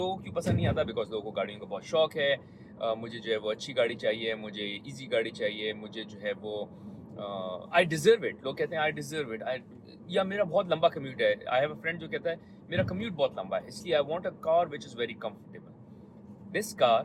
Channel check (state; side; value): identical; both; correlation 1.00